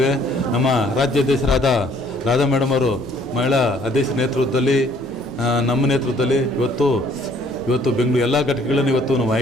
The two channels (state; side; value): normal; both; correlation 0.61